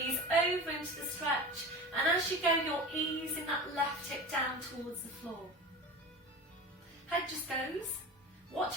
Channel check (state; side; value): normal; both; correlation 0.31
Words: over into the stretch, and as you go you're easing that left hip down towards the floor. Head just goes, watch